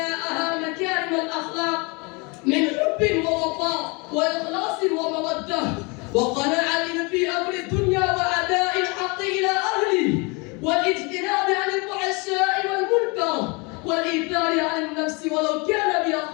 مكارم الأخلاق من حب ووفاء وإخلاص ومودة وقناعة في أمر الدنيا وأداء الحق إلى أهله والاجتناب عن الفحشاء والمنكر والإيثار عن النفس ولو كان بها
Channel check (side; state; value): right; quieter; 29.3 dB